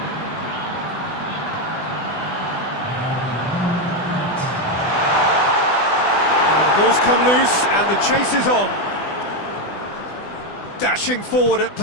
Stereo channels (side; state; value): right; late; 20 ms